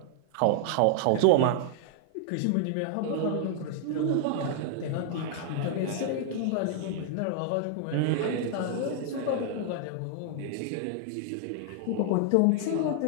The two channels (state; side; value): different; both; correlation -0.01